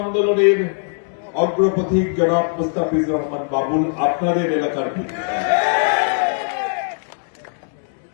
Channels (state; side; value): silent; right; 65 dB below the other